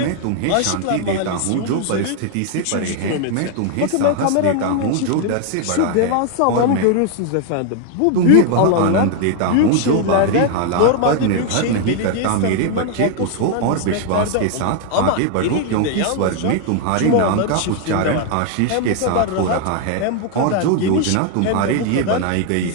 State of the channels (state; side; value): different; both; correlation 0.00